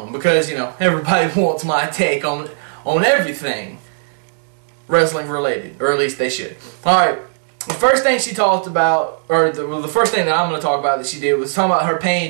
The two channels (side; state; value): left; silent; digital silence